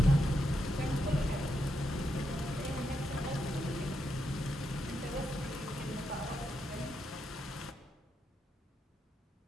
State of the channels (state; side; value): normal; both; correlation 0.83